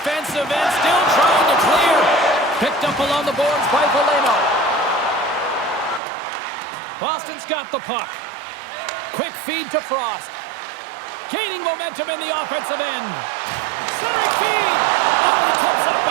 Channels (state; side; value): drops out; left; at 6.0 s